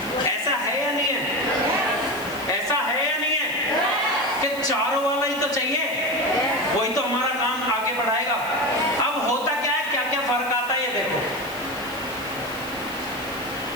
ऐसा है या नहीं है? ऐसा है या नहीं है कि चारों वाला ही तो चाहिए, वही तो हमारा काम आगे बढ़ाएगा। अब होता क्या है, क्या क्या फर्क आता है ये देखो।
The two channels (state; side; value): noise; left; hiss, 16 dB below the sound